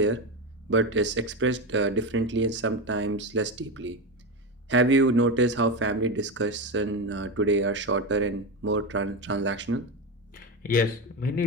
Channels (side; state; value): both; normal; correlation 0.16